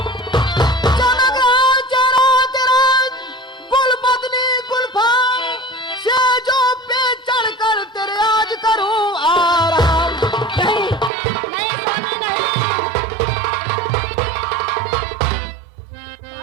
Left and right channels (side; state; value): left; drops out; at 11.1 s